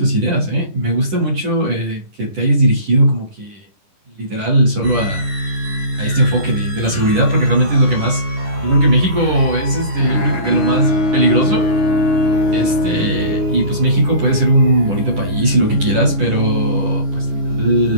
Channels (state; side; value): late; left; 10 ms